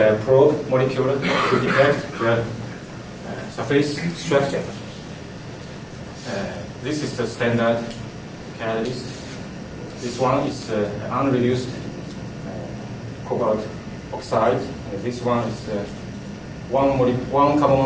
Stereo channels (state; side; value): identical; both; correlation 1.00